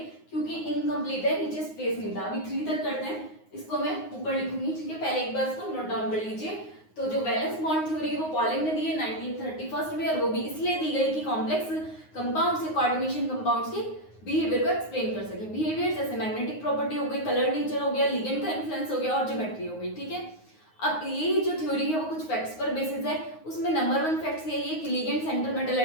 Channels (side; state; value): right; late; 9.5 ms